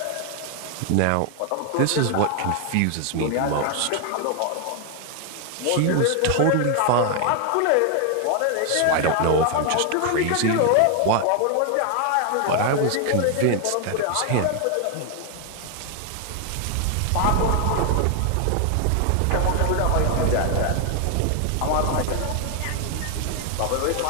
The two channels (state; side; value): different; both; correlation 0.00